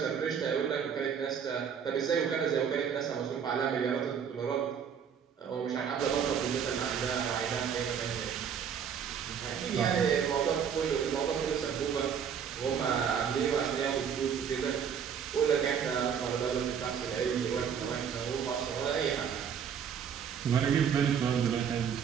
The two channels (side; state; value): left; quieter; 7.6 dB